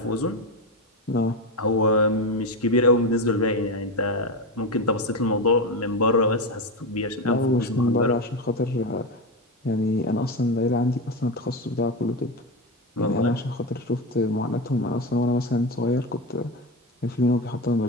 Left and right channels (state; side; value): normal; both; correlation 0.16